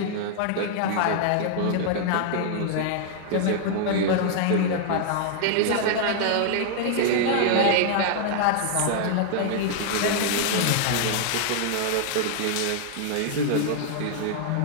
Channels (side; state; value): both; different; correlation 0.00